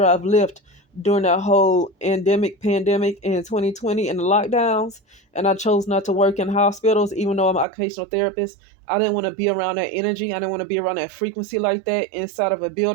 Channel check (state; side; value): drops out; left; at 7.7 s